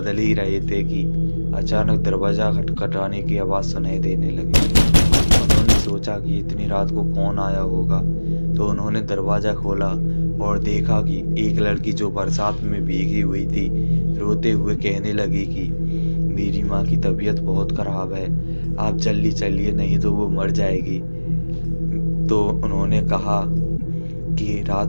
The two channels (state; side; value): inverted; both; correlation -1.00